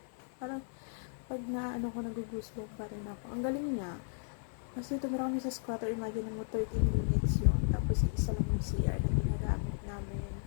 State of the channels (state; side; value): silent; right; 54 dB below the other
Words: Parang pag nagugusbong pa rin ako. Ang galing niya. Kasi tumira kami sa squatter, imagine mo 13 units yun. Tapos isa lang yung CR na ginagamit namin